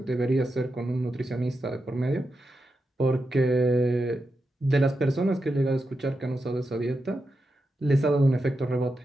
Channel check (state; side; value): normal; both; correlation 0.88